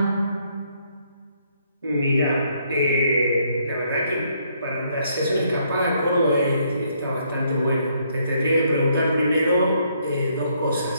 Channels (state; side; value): inverted; both; correlation -0.71